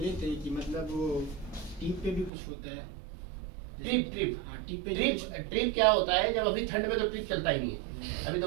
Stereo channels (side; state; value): left; drops out; at 2.3 s